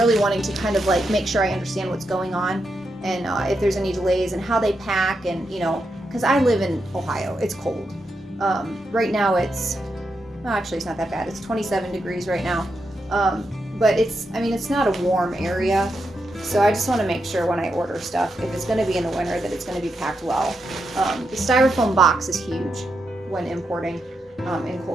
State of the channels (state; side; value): normal; both; correlation 0.84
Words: wanting to kind of like make sure I understand what's going on, and if there's any delays and how they pack, and you know, because I live in Ohio, it's cold. Right now it's, well, actually it's not that bad. It's 27 degrees right now. But it's not a warm area. So I just want to make sure when I order stuff, if it's going to be in the winter, that it's going to be packed well. The styrofoam box is huge when importing in